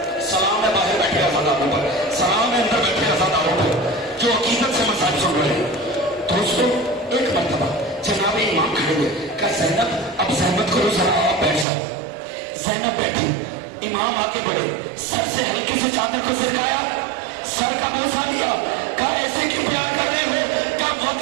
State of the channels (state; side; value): drops out; left; at 11.7 s